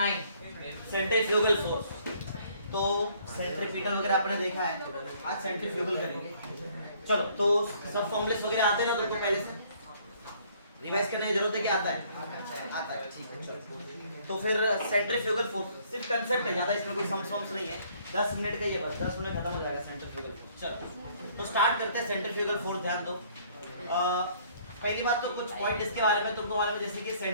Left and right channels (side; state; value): both; inverted; correlation -0.61